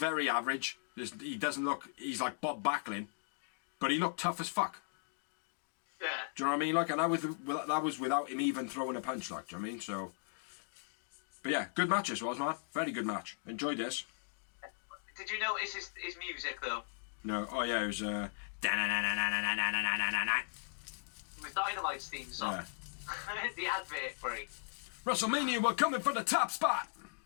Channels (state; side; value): silent; right; digital silence